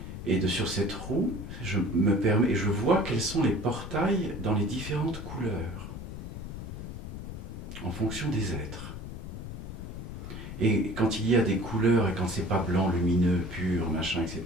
Et sur cette roue, je vois quels sont les portails dans les différentes couleurs. en fonction des êtres. Et quand il y a des couleurs et quand c'est pas blanc, lumineux, pur, machin,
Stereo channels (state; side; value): noise; left; rumble, 9 dB below the sound